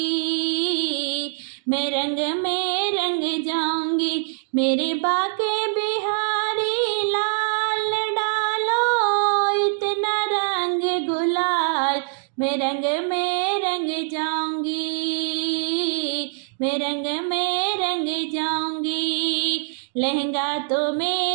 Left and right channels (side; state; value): left; silent; digital silence